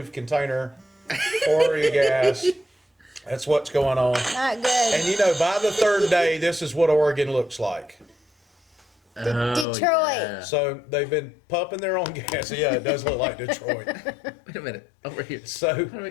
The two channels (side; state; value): right; drops out; at 9.7 s